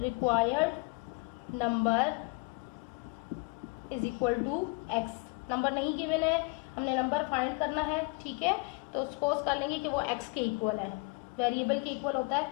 required number is equal to x, number नहीं गिवन है, हमने नंबर फाइंड करना है, ठीक है। तो सपोज कर लेंगे कि वो एक्स के इक्वल है, वेरिएबल के इक्वल होता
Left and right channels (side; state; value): right; quieter; 29.7 dB